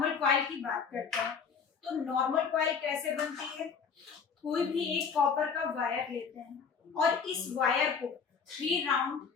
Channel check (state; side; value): quieter; right; 6.0 dB